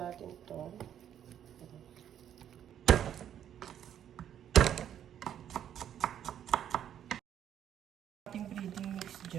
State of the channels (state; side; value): quieter; left; 10.0 dB